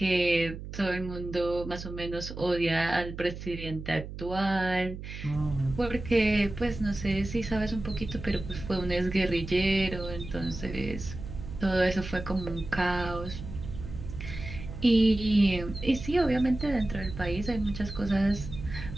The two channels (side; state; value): right; noise; hum, 10 dB below the sound